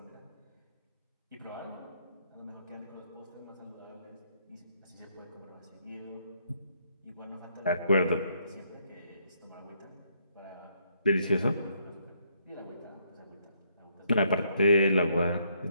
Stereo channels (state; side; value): inverted; both; correlation -0.72